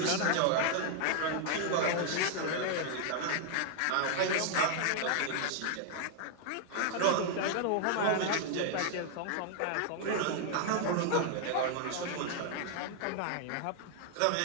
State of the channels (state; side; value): different; both; correlation 0.00